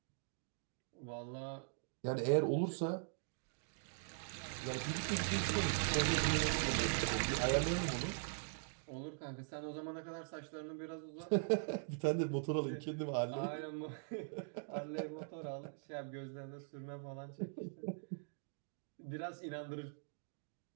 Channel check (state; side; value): silent; left; digital silence